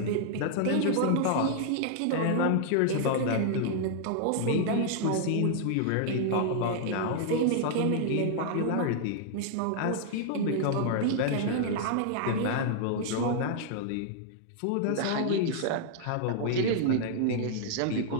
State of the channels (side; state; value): both; different; correlation -0.01